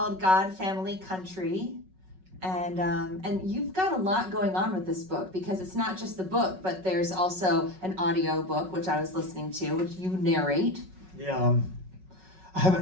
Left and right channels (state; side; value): late; left; 5.4 ms